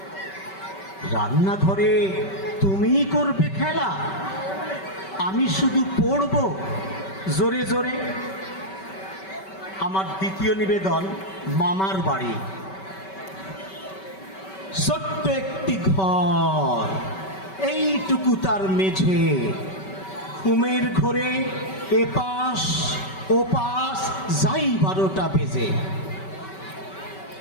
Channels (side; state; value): right; late; 5.2 ms